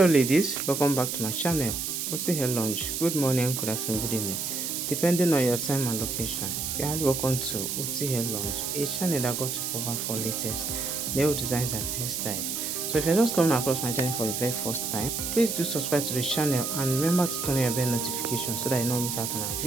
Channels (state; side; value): noise; right; hiss, 3 dB below the sound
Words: ladies, welcome back to my channel. Osi Hair Lounge. Good morning, good afternoon, good evening, depending on your time and location. You're highly welcome to Osi Hair Lounge, a channel that got to cover for latest nail designs and hairstyles. So if you're just coming across my channel for the very first time, please do subscribe to the channel and remember to turn on your bell notification so that you don't miss out on our